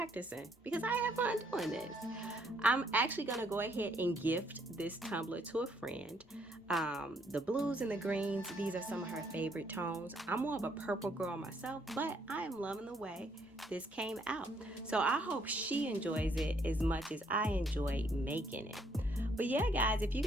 because I have fun doing this. I'm actually going to go ahead and gift this tumbler to a friend. The blues and the greens, these are some of her favorite tones. I'm more of a purple girl myself, but I am loving the way this came out. So I hope she enjoys it as much as I enjoyed making it. But yeah, guys, if you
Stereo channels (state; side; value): normal; both; correlation 0.69